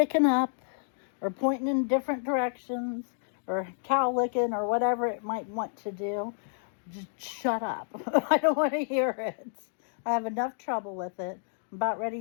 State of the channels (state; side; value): silent; right; digital silence